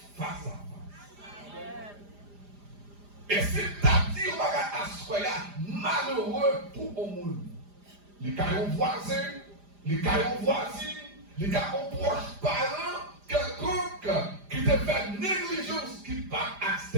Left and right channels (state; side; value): late; left; 4.9 ms